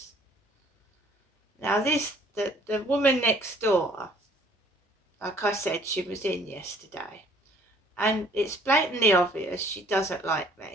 Now Now the woman next door, like I said, she was in yesterday, and it's blatantly obvious she doesn't like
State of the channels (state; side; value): normal; both; correlation 0.57